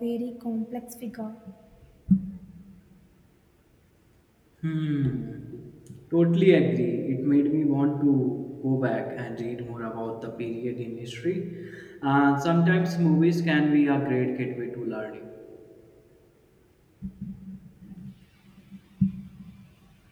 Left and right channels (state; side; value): identical; both; correlation 1.00